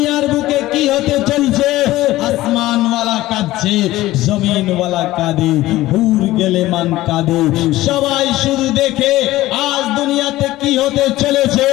বুকে কি হতে চলছে, আসমান ওয়ালা কাঁদছে, জমিন ওয়ালা কাঁদে, হুর গেলে মান কাঁদে, সবাই শুধু দেখে আজ দুনিয়াতে কি হতে চলেছে।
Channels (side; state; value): right; quieter; 16.7 dB